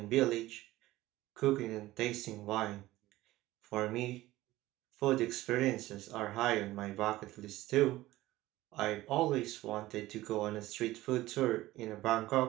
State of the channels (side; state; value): left; quieter; 17.0 dB